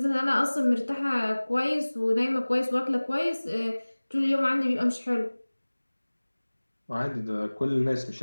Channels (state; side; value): inverted; both; correlation -1.00